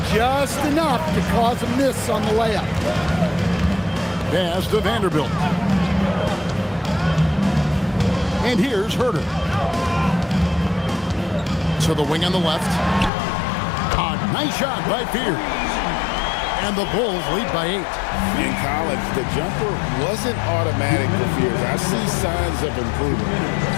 just enough to cause a miss on the layup. Pass to Vanderbilt. And here's Herter. To the wing on the left. A nice shot by Fears. And the Bulls lead by 8. In college, the jumper wasn't automatic for Fears. I see signs of improvement.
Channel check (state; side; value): drops out; right; at 13.1 s